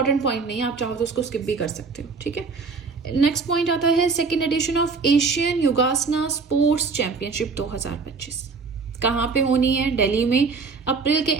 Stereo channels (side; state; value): left; quieter; 4.6 dB